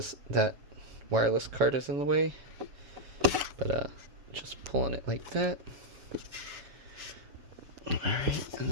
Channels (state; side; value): late; left; 7.2 ms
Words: that wireless card is in the way. But just pulling it like that. Alright, and